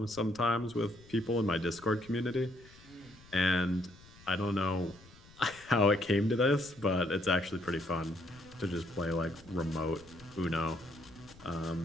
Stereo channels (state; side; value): noise; left; rumble, 23 dB below the sound